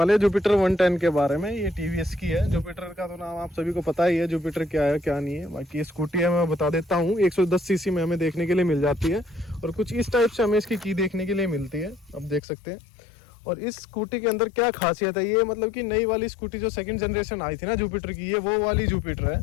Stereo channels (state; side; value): drops out; right; at 12.4 s